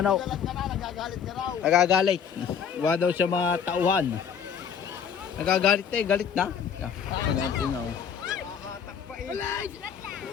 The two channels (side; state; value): right; quieter; 7.6 dB